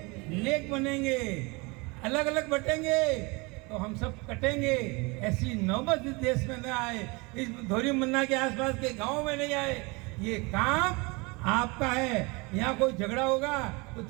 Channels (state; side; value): quieter; left; 27.1 dB